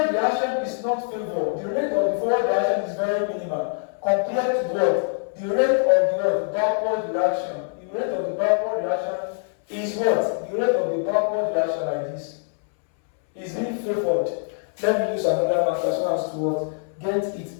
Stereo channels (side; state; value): right; silent; 63 dB below the other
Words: reaction is not favored. The rate of the forward reaction is very minimal compared to what? The rate of the what? Backward reaction. The rate of the backward reaction is what? The rate of the backward reaction like this is being favored. Let me use another marker so as to what? Get it